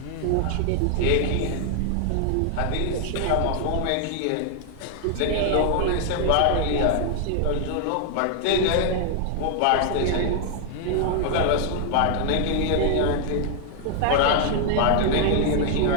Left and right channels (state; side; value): different; both; correlation 0.00